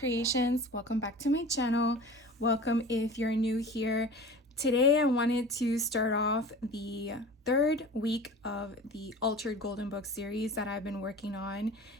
Welcome back to my channel. Welcome if you're new here. Today I wanted to start off the third week of the Altered Golden Book series that I've been working on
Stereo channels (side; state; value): both; normal; correlation 0.38